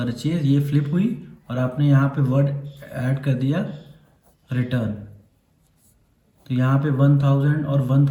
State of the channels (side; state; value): both; identical; correlation 1.00